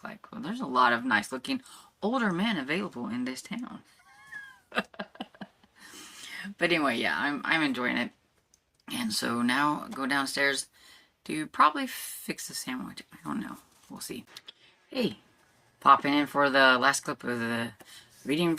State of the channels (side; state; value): both; identical; correlation 1.00